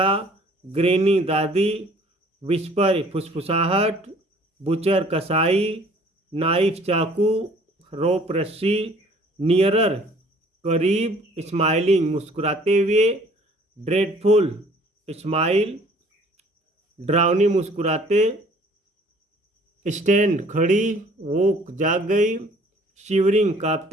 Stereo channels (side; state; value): both; normal; correlation 0.55